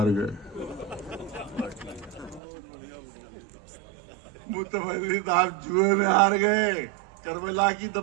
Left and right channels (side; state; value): left; drops out; at 2.4 s